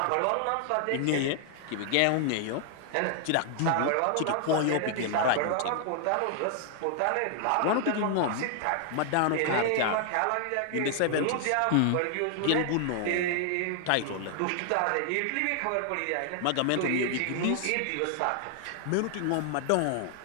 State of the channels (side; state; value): both; different; correlation 0.00